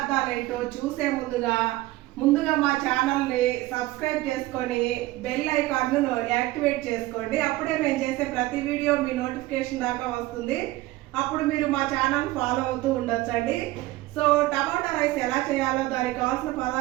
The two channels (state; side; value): quieter; left; 18.1 dB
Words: ఏంటో చూసే ముందుగా మా ఛానల్ని సబ్స్క్రైబ్ చేసుకొని బెల్ ఐకాన్ను యాక్టివేట్ చేసుకోండి. అప్పుడే మేము చేసే ప్రతి వీడియో మీ నోటిఫికేషన్ దాకా వస్తుంది. అప్పుడు మీరు మా ఛానల్ ఫాలో అవుతూ ఉండొచ్చండి. సో టమాటా రైస్ ఎలా చేయాలో, దానికి కావాల్సిన